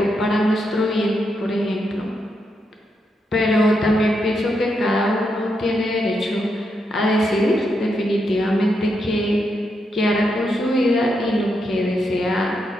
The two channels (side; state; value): both; normal; correlation 0.82